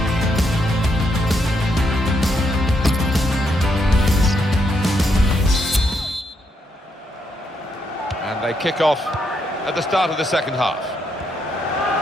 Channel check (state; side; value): normal; both; correlation 0.78